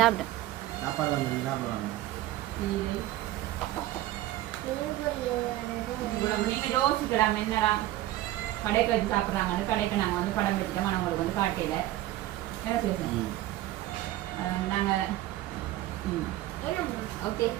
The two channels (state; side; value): quieter; left; 15.2 dB